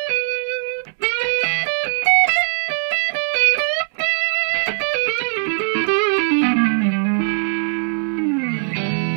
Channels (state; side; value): silent; left; digital silence